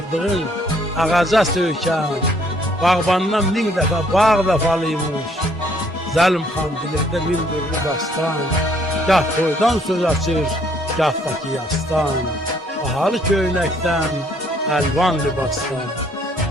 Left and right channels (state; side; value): normal; both; correlation 0.65